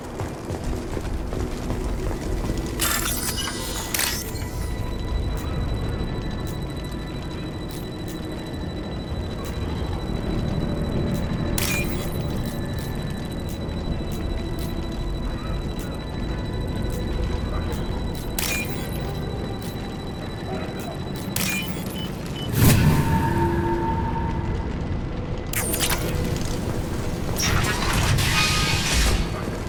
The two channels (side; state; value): both; identical; correlation 1.00